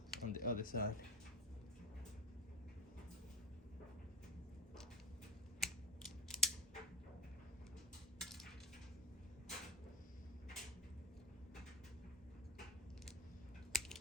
on the other side.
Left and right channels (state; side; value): normal; both; correlation 0.30